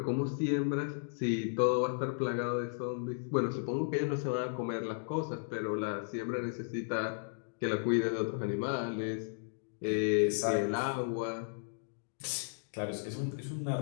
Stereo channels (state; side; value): silent; right; digital silence